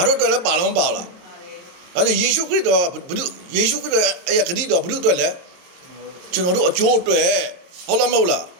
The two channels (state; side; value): late; left; 22 ms